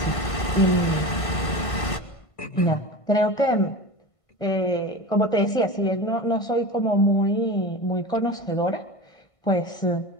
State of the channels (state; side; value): late; right; 1.5 ms